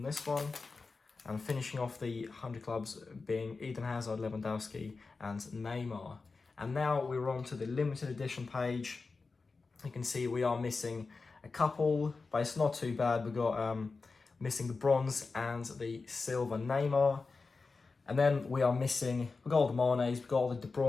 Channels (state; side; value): quieter; right; 4.2 dB